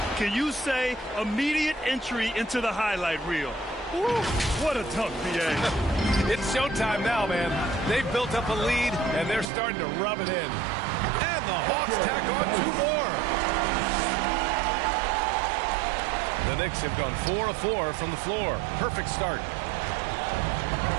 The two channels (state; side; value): drops out; left; at 9.5 s